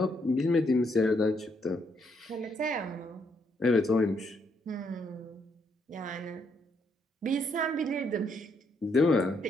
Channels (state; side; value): normal; both; correlation 0.74